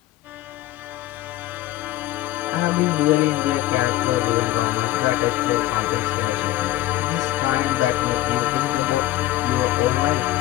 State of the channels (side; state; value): right; quieter; 15.4 dB